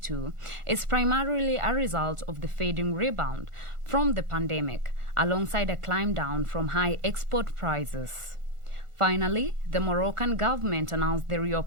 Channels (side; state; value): left; late; 1.4 ms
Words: is primarily a result of the fading rebound from the pandemic, alongside a climb down from high export prices. Finally, the Moroccan government announced the